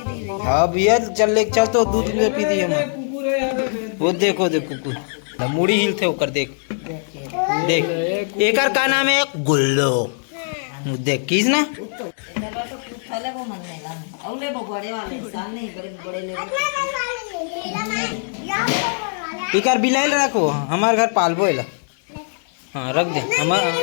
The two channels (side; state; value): right; silent; 65 dB below the other